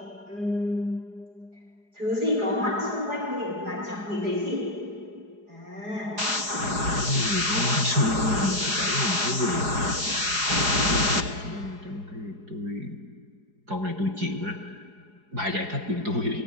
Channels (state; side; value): late; left; 4.8 ms